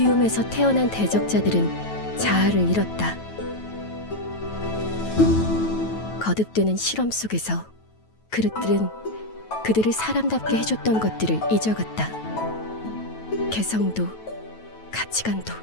태어난 대적자들은 자아를 잃었다. 거듭되는 실험 속에서 그릇들은 그들을 사람답게 해줬던 것들을 잊어갔다. 개성도 가치관도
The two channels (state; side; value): late; right; 9.2 ms